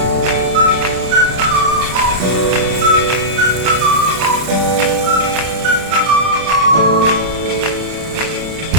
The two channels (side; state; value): left; late; 32 ms